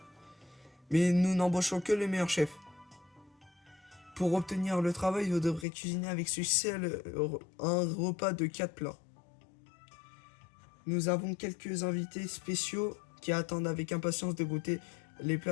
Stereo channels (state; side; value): drops out; right; at 5.7 s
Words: Mais nous n'embauchons que les meilleurs chefs. Pour obtenir le travail, vous devrez cuisiner avec succès un repas de 4 plats. Nous avons quelques invités spéciaux qui attendent avec impatience de goûter les